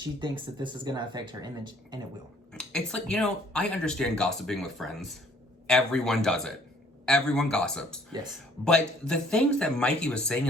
thinks that this is going to affect her image, and it will. It's like, I understand gossiping with friends. Everyone does it. Everyone gossips. Yes. But the things that Mykie was saying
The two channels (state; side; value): normal; both; correlation 0.59